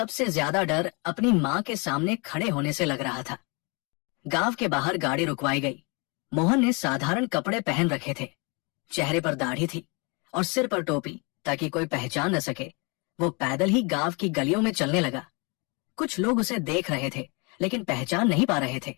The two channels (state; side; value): quieter; right; 30.9 dB